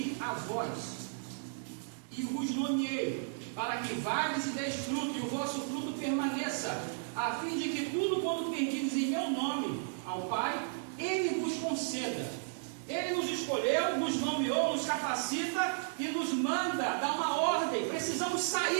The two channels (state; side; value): silent; left; digital silence